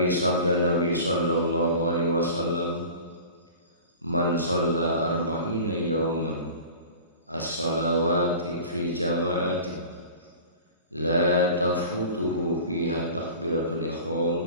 sabda Nabi Sallallahu Alaihi Wasallam, man shalla arba'ina yawman as-salawati fi jama'ati la tafutuhu fiha takbiratul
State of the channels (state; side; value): inverted; both; correlation -0.39